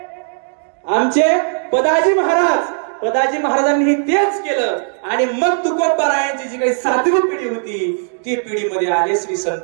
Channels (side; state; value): left; silent; digital silence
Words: आमचे पदाजी महाराज. पदाजी महाराजांनी तेच केलं. आणि मग तुकोबारायांची जी काही 7वी पिढी होती ती पिढीमध्ये आले श्री